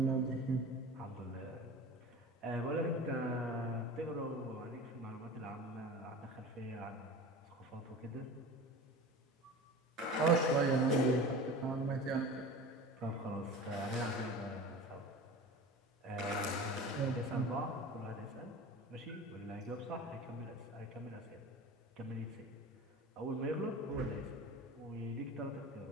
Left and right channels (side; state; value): both; normal; correlation 0.35